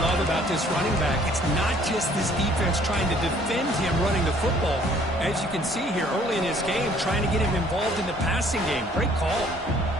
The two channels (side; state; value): both; normal; correlation 0.59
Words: about this running back, it's not just this defense trying to defend him running the football. As you can see here early in this game, trying to get him involved in the passing game. Great call.